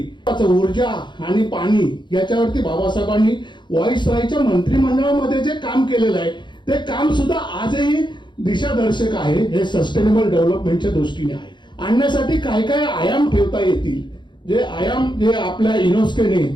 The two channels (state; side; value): late; right; 0.22 ms